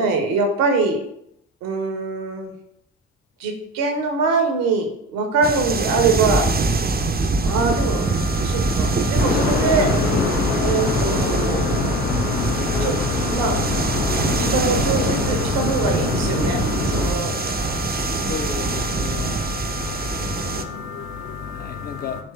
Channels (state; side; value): normal; both; correlation 0.30